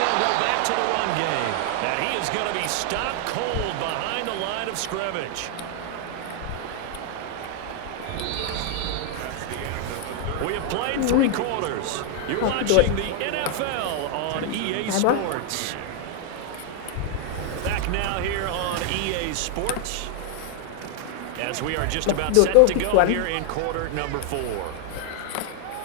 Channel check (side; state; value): both; different; correlation 0.00